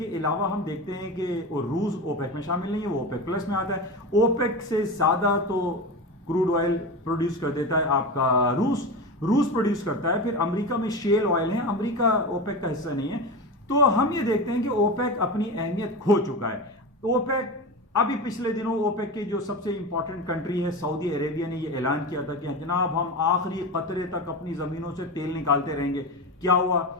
अलावा हम देखते हैं कि रूस ओपेक में शामिल नहीं है, वो ओपेक प्लस में आता है। ओपेक से ज्यादा तो क्रूड ऑयल प्रोड्यूस कर देता है आपका रूस प्रोड्यूस करता है। फिर अमेरिका में शेल ऑयल है, अमेरिका ओपेक का हिस्सा नहीं है। तो हम ये देखते हैं कि ओपेक अपनी अहमियत खो चुका है। ओपेक अभी पिछले दिनों ओपेक के जो सबसे इंपॉर्टेंट कंट्री है सऊदी अरेबिया ने ये ऐलान किया था कि जनाब हम आखिरी कतरे तक अपनी जमीनों से तेल निकालते रहेंगे। क्या हुआ?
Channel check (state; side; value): normal; both; correlation 0.24